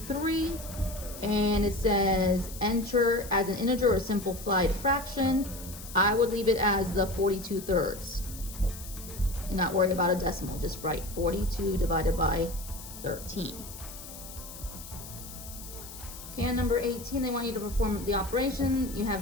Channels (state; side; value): noise; left; hiss, 14 dB below the sound